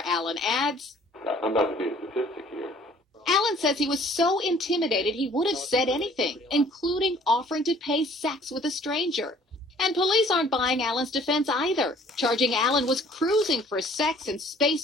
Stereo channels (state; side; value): normal; both; correlation 0.56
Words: Allen adds, I'm about to be a statistic here. Allen says he was so intimidated he would have said anything, including offering to pay sex with a stranger. And police aren't buying Allen's defense either, charging Allen was cruising for sex in